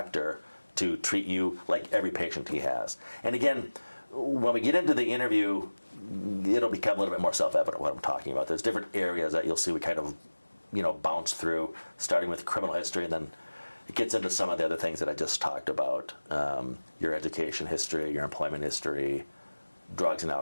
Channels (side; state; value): both; inverted; correlation -1.00